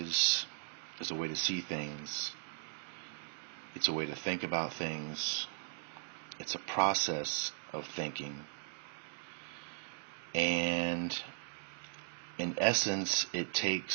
is a way to see things. It's a way to think about things. It's a process of thinking. And in essence, it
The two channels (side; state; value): left; silent; digital silence